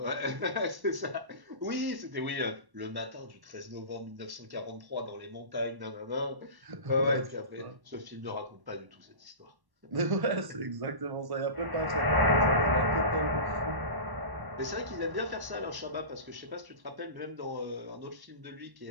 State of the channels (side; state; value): left; late; 1.1 ms